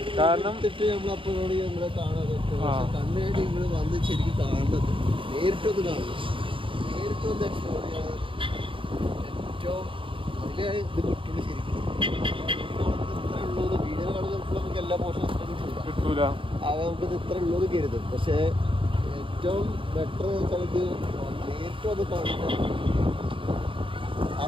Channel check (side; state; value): left; late; 0.25 ms